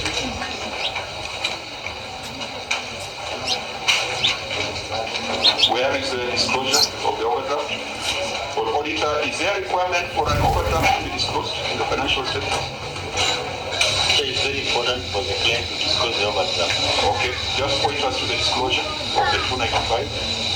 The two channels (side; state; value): both; identical; correlation 1.00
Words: Where is the disclosure of the overdraft? For auditor, is there a requirement for an overdraft to be disclosed in the financial statements? It's very important for the client to disclose the overdraft. Okay, just point us to the disclosure of the